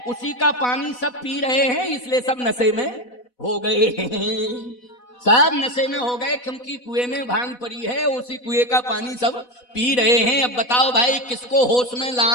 उसी का पानी सब पी रहे हैं, इसलिए सब नशे में हो गए हैं। सब नशे में हो गए क्योंकि कुएं में भांग पड़ी है, उसी कुएं का पानी सब पी रहे हैं। अब बताओ भाई किसको होश में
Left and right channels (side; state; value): right; late; 4.1 ms